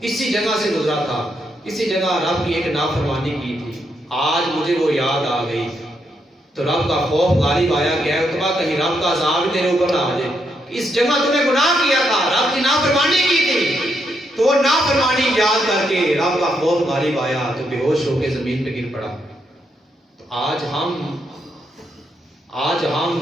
اسی جگہ سے گزرا تھا، اسی جگہ رب کی ایک نافرمانی کی تھی، آج مجھے وہ یاد آ گئی۔ تو رب کا خوف غالب آیا کہ اے عتبہ کہیں رب کا عذاب تیرے اوپر نہ آ جائے، اس جگہ تم نے گناہ کیا تھا، رب کی نافرمانی کی تھی، تو وہ نافرمانی یاد کر کے رب کا خوف غالب آیا تو بے ہوش ہو کے زمین پہ گر پڑا۔ تو آج ہم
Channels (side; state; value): both; normal; correlation 0.79